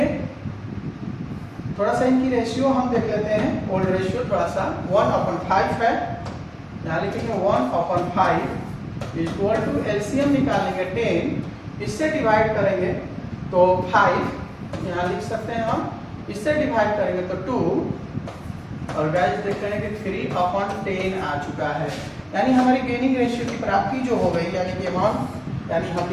थोड़ा सा इनकी रेशियो हम देख लेते हैं, ओल्ड रेशियो थोड़ा सा 1/5 है, यहाँ लिखेंगे 1/5 इक्वल टू एलसीएम निकालेंगे 10, इससे डिवाइड करेंगे तो 5 यहाँ लिख सकते हैं हम, इससे डिवाइड करेंगे तो 2 और गाइस देख रहे हैं कि 3/10 आ चुका है। यानी हमारी गेनिंग रेशियो की प्राप्ति जो हो गई, यानी कि अमाउंट, यानी हम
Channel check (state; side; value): identical; both; correlation 1.00